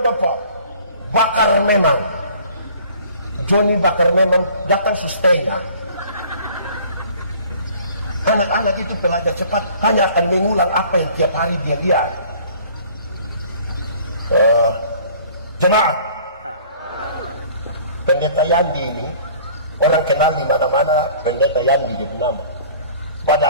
bakar memang. Johnny bakar memang datang setengah. Anak-anak itu pelajar cepat hanya akan mengulang apa yang tiap hari dia lihat. Jemaat, Pendeta Yandi ini orang kenal di mana-mana, Pendeta Yandi dia nama.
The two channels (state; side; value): inverted; both; correlation -0.50